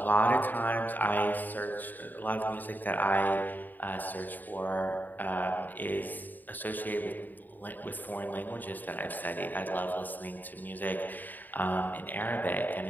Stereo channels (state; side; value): late; right; 0.087 ms